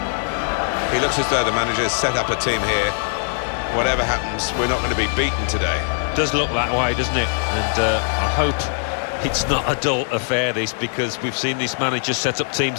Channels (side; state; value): right; silent; 65 dB below the other